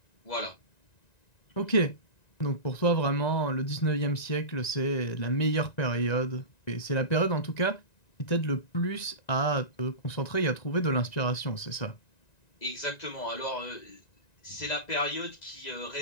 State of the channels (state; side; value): late; right; 1.9 ms